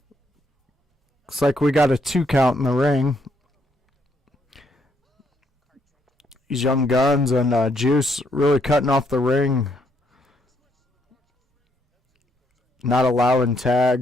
Looks like we got a 2 count in the ring. These Young Guns and Juice really cutting off the ring. Not allowing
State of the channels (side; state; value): both; normal; correlation 0.73